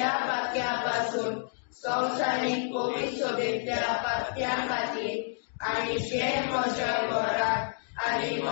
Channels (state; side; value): silent; right; digital silence